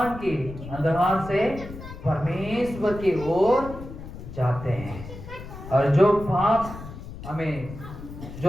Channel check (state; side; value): noise; left; rumble, 12 dB below the sound